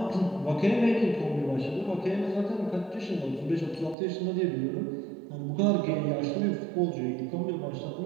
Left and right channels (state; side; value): drops out; left; at 4.0 s